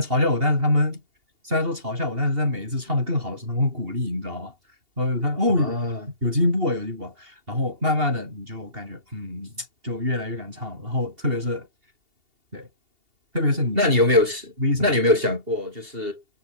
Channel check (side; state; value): left; late; 2.8 ms